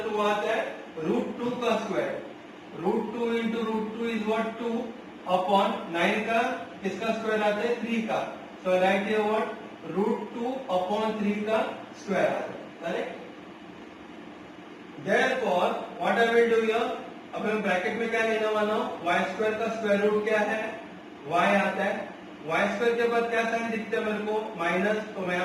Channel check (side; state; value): both; identical; correlation 1.00